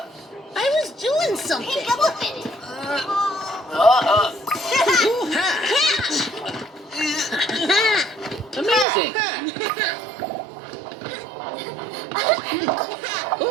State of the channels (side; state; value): left; drops out; at 8.8 s